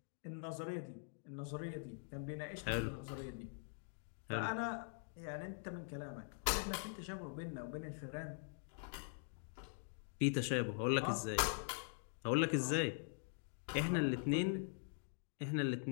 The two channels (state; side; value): silent; right; digital silence